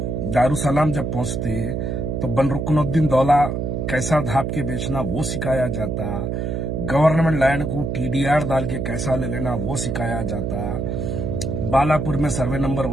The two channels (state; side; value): noise; right; hum, 2 dB below the sound